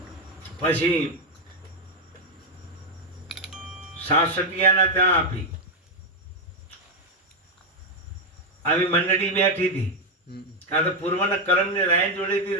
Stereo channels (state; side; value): normal; both; correlation 0.03